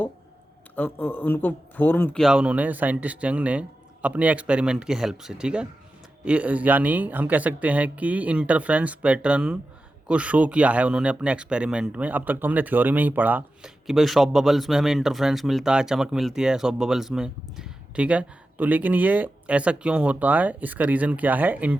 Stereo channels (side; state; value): both; normal; correlation 0.92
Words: उनको फॉर्म किया उन्होंने, साइंटिस्ट यंग ने अपने एक्सपेरिमेंट की हेल्प से। ठीक है, यानी हम कह सकते हैं कि इंटरफ्रेंस पैटर्न को शो किया है उन्होंने अपने एक्सपेरिमेंट में। अब तक तो हमने थ्योरी में ही पढ़ा कि भाई शॉप बबल्स में हमें इंटरफ्रेंस मिलता है, चमक मिलती है शॉप बबल्स में। ठीक है, तो लेकिन ये ऐसा क्यों होता है, इसका रीज़न क्या है,